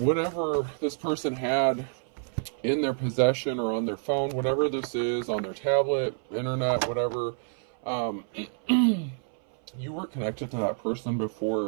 this person had in their possession or on their phone, whatever this is, on their tablet, internet, whatever, you were connected to that person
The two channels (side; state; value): left; silent; 58 dB below the other